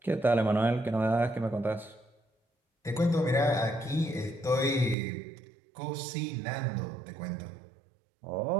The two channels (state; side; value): drops out; left; at 5.0 s